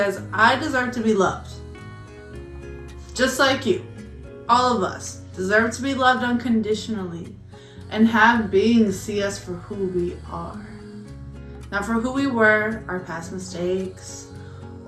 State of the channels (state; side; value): identical; both; correlation 1.00